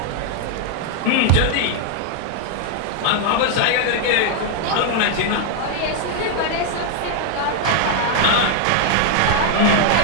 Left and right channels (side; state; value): both; different; correlation 0.00